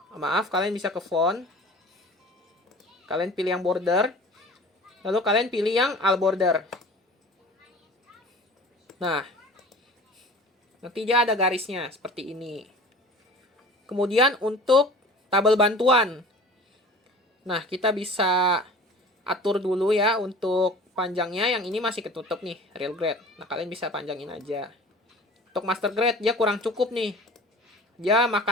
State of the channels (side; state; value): both; normal; correlation 0.42